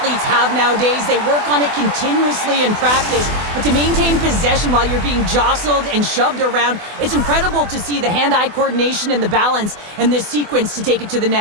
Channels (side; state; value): left; late; 24 ms